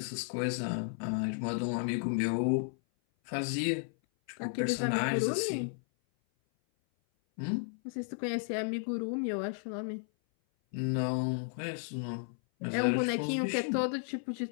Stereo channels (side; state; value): right; silent; 55 dB below the other